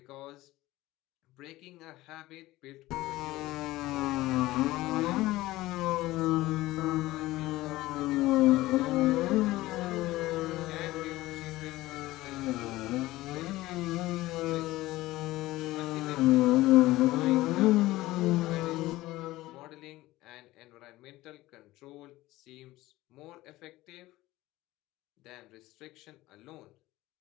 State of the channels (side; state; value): right; quieter; 17.7 dB